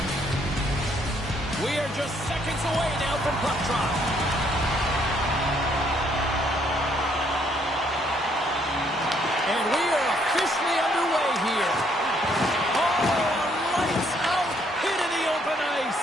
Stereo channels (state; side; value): normal; both; correlation 0.68